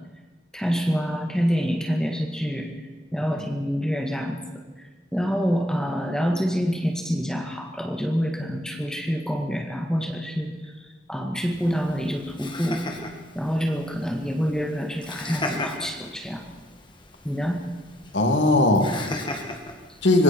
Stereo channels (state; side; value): normal; both; correlation 0.71